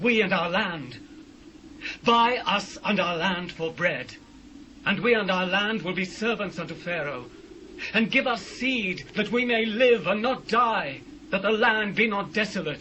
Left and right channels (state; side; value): identical; both; correlation 1.00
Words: and our land? Buy us and our land for bread, and we and our land will be servants unto Pharaoh. And give us seed, that we may live and not die, that the land be not